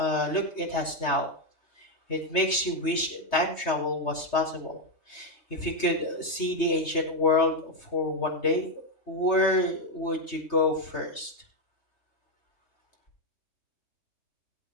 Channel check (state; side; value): late; right; 3.3 ms